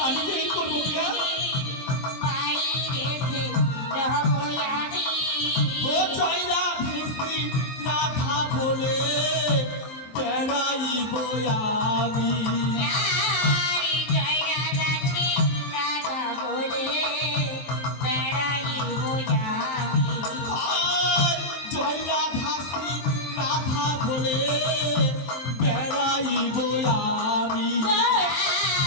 আমি যে এই করবো পিয়া। ও জয়রা ভেসি রাধা বলে বেড়াইব আমি। আর জয়রা ভাসি রাধা বলে বেড়াইব আমি।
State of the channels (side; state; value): right; late; 23 ms